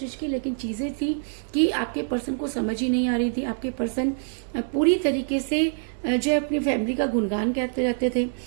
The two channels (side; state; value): left; silent; digital silence